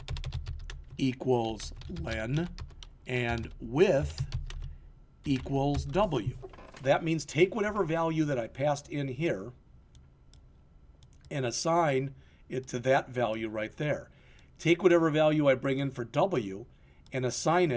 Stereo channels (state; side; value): identical; both; correlation 1.00